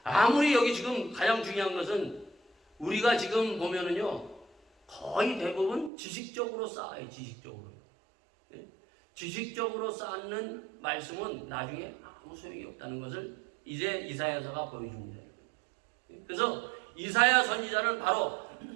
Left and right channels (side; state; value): left; drops out; at 5.9 s